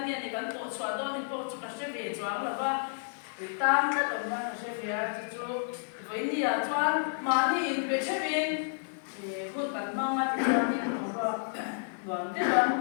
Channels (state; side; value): silent; right; digital silence